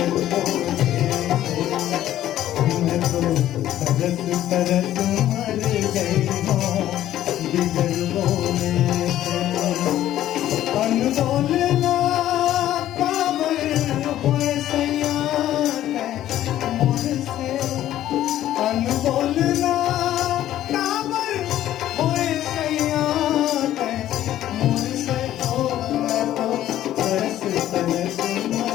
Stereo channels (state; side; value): quieter; right; 12.8 dB